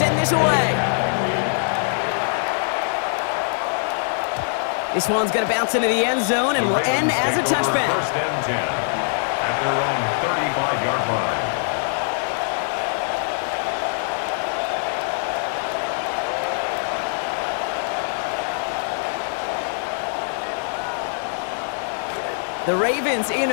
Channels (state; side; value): silent; right; digital silence